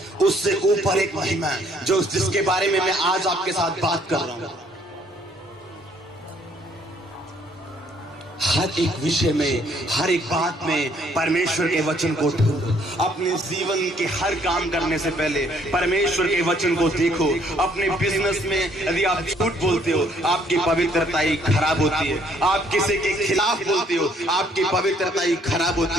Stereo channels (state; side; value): normal; both; correlation 0.64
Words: उससे ऊपर एक महिमा है जो जिसके बारे में मैं आज आपके साथ बात कर रहा हूं। हर एक विषय में, हर एक बात में परमेश्वर के वचन को ढूंढो। अपने जीवन के हर काम करने से पहले परमेश्वर के वचन को देखो। अपने बिजनेस में यदि आप झूठ बोलते हो, आपकी पवित्रताई खराब होती है। आप किसी के खिलाफ बोलते हो, आपकी पवित्रताई खराब